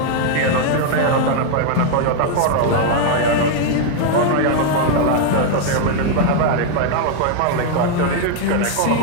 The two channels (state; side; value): different; both; correlation 0.00